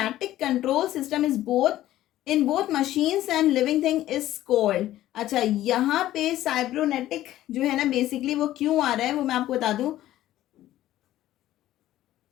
control system is in both machines and living thing is called. अच्छा, यहाँ पे साइब्रोनेटिक जो है ना, basically वो क्यों आ रहा है वो मैं आपको बता दूं.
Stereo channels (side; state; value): right; quieter; 14.0 dB